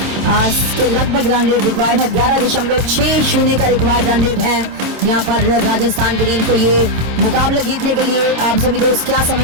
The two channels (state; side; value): late; left; 27 ms